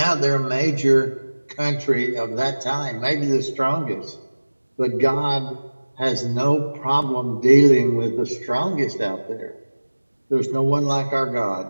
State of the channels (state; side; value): inverted; both; correlation -1.00